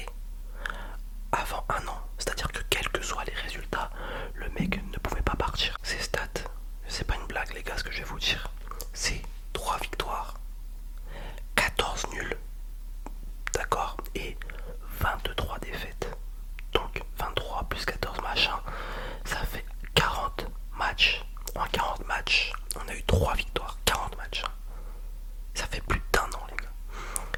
avant 1 an. C'est-à-dire que quels que soient les résultats, le mec ne pouvait pas partir. Ces stats, c'est pas une blague les gars ce que je vais vous dire. C'est 3 victoires, 14 nuls, d'accord, et 23 défaites. Donc 23 plus 14 machin, ça fait 40 matchs. En 40 matchs, on a eu 3 victoires, 40 matchs. Ça fait plus d'1 an les gars.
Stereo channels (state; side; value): identical; both; correlation 1.00